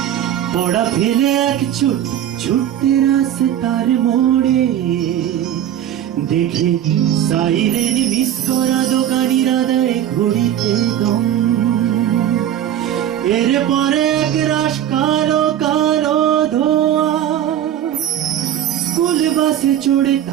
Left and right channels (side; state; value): left; quieter; 10.9 dB